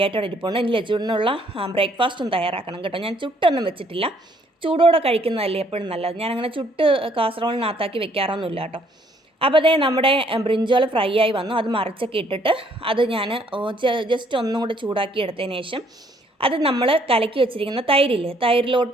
ഇരിപ്പുണ്ട്. ഇനി ലച്ചൂട്ടിനുള്ള ബ്രേക്ക്ഫാസ്റ്റും തയ്യാറാക്കണം കേട്ടോ. ഞാൻ ചുട്ടൊന്നും വെച്ചിട്ടില്ല, ചൂടോടെ കഴിക്കുന്നതല്ലേ എപ്പോഴും നല്ലത്. ഞാനങ്ങനെ ചുട്ട് കാസറോളിനകത്താക്കി വെക്കാറൊന്നുമില്ല കേട്ടോ. അപ്പോൾ അതേ നമ്മുടെ ബ്രിഞ്ചോൾ ഫ്രൈ ആയി വന്നു, അത് മറിച്ചൊക്കെ ഇട്ടിട്ട് അത് ഞാൻ ജസ്റ്റ് ഒന്നും കൂടെ ചൂടാക്കി എടുത്തതിന് ശേഷം അത് നമ്മൾ കലക്കി വെച്ചിരിക്കുന്ന തൈരില്ലേ,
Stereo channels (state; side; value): normal; both; correlation 0.65